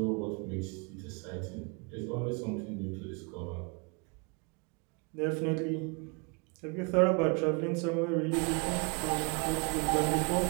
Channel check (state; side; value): quieter; left; 32.1 dB